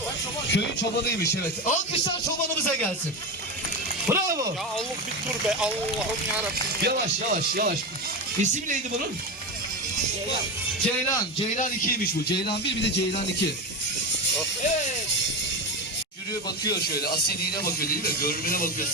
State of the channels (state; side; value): normal; both; correlation 0.19